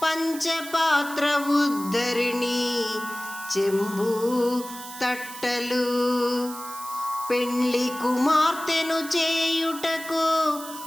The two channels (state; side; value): noise; right; hiss, 13 dB below the sound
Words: పంచపాత్ర ఉద్ధరిణి, చెంబు తట్టలు, పెండ్లి కుమార్తెను చేయుటకు